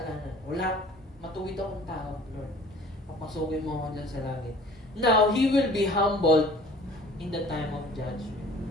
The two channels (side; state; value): both; normal; correlation 0.49